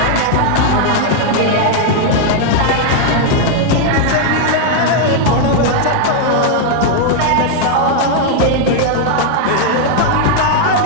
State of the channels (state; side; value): different; both; correlation 0.00